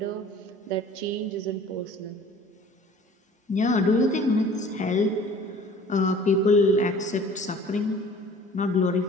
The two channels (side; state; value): both; normal; correlation 0.48